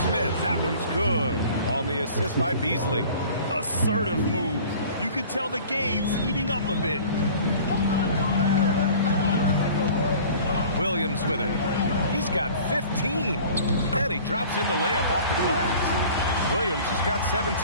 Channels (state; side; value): inverted; both; correlation -0.46